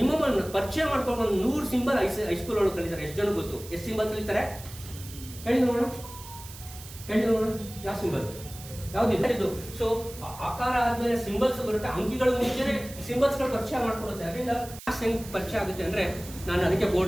ಪರಿಚಯ ಮಾಡ್ಕೊಂಡು ಒಂದು 100 ಸಿಂಬಲ್ ಹೈಸ್ಕೂಲ್ ಒಳಗೆ ಕಲಿತಾರೆ. ಎಷ್ಟು ಜನ ಗೊತ್ತು? ಎಷ್ಟು ಸಿಂಬಲ್ ಕಲಿತಾರೆ ಹೇಳಿ ನೋಡೋಣ, ಹೇಳಿ ನೋಡೋಣ. ಯಾವ ಸಿಂಬಲ್ ಯಾವ್ದಿಲ್ಲ ಇದು. ಸೊ ಆಕಾರ ಆದ್ಮೇಲೆ ಸಿಂಬಲ್ಸ್ ಬರುತ್ತೆ. ಅಂಕಿಗಳು ಮುಂಚೆನೆ ಸಿಂಬಲ್ಸ್ಗಳು ಪರಿಚಯ ಮಾಡ್ಕೊಡುತ್ತೆ. ಅದರಿಂದ ಮ್ಯಾಥ್ಸ್ ಹೆಂಗ್ ಪರಿಚಯ ಆಗುತ್ತೆ ಅಂದ್ರೆ, ನಾನು ಅದಕ್ಕೆ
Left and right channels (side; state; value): right; noise; hiss, 15 dB below the sound